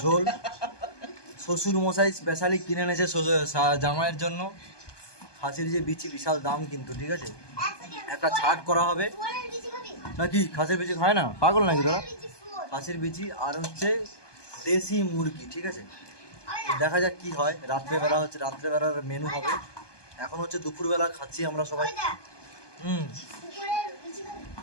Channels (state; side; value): late; right; 1.2 ms